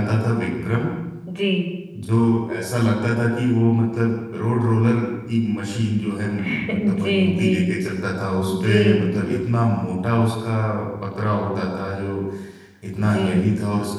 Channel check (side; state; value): both; identical; correlation 1.00